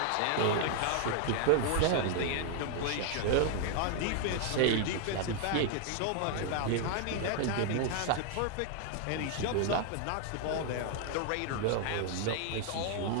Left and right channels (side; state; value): both; different; correlation 0.00